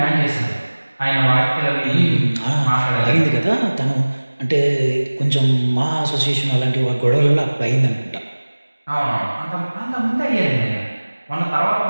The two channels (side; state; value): both; inverted; correlation -1.00